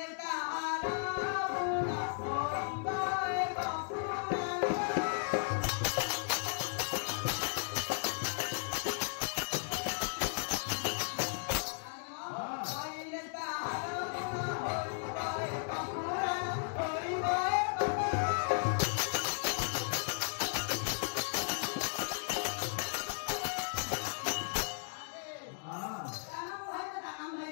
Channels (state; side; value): silent; right; digital silence